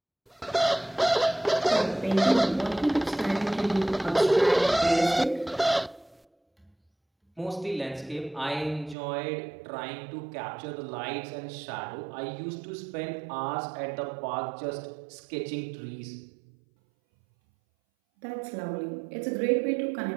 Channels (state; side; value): drops out; left; at 9.0 s